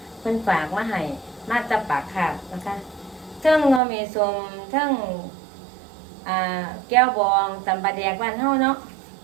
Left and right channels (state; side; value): drops out; left; at 3.8 s